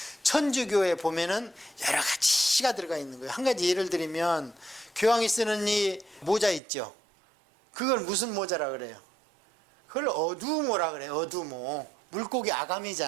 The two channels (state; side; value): drops out; left; at 6.6 s